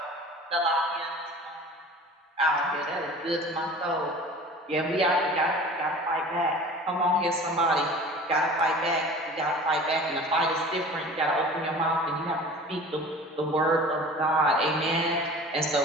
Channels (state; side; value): normal; both; correlation 0.41